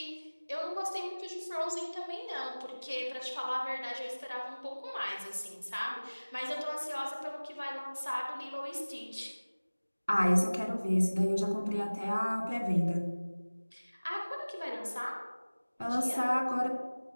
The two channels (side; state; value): both; inverted; correlation -1.00